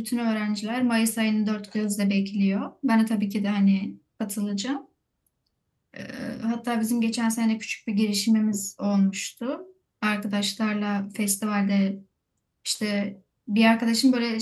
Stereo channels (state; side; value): identical; both; correlation 1.00